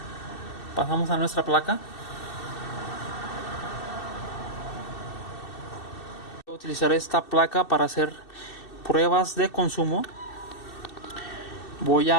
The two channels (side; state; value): right; late; 2.7 ms